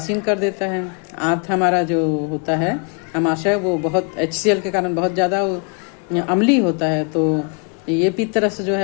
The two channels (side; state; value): right; quieter; 37.1 dB